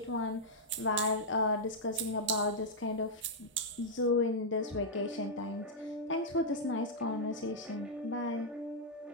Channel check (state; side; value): normal; both; correlation -0.07